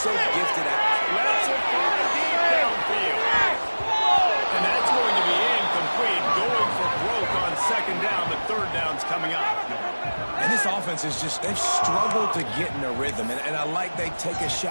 gifted at Let's it fly deep downfield. And that's going to be incomplete. Going for broke on second down. The third down's coming up. And this offense is just, they've struggled to get in a rhythm. And I like they take a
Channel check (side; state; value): both; inverted; correlation -1.00